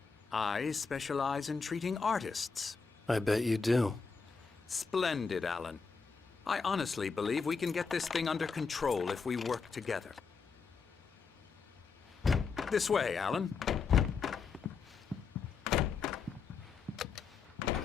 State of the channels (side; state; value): right; quieter; 5.1 dB